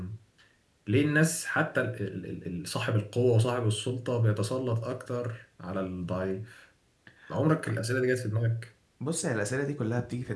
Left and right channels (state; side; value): identical; both; correlation 1.00